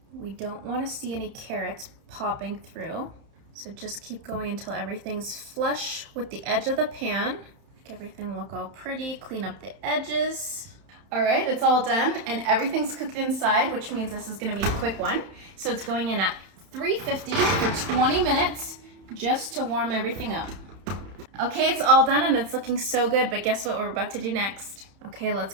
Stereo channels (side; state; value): left; late; 31 ms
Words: We don't want to see any carrots popping through. So just keep going until everything's flush with the edge of the pan. Make everything look all pretty, clean up the edges. All right, it's all done and everything's cooked inside, which means this is gonna be a quick one. So it's going in at 350 for 20 minutes just to warm everything up. Okay, it's all done and it's looking so good, but guess what we're about to do next? Okay, let's